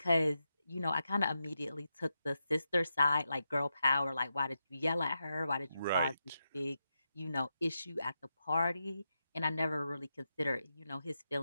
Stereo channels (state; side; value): inverted; both; correlation -0.87